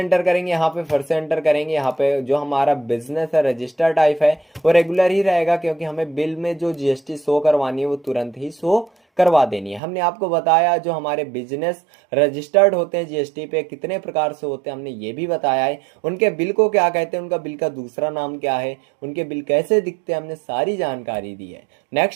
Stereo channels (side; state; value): left; drops out; at 9.8 s